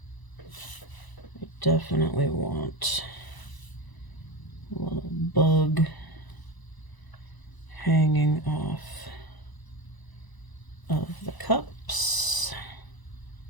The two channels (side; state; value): right; late; 1.0 ms